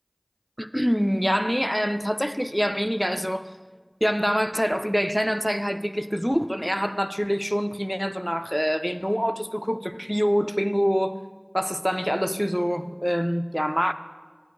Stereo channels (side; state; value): both; identical; correlation 1.00